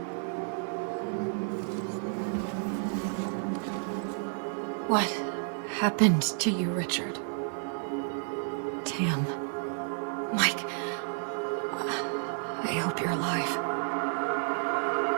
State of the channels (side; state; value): left; silent; 56 dB below the other